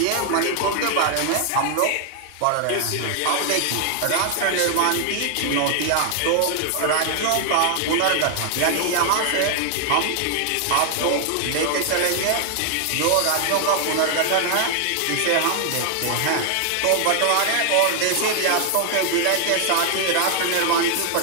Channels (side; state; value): both; different; correlation 0.00